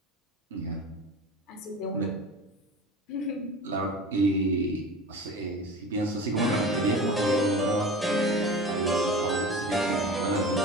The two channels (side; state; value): both; normal; correlation 0.34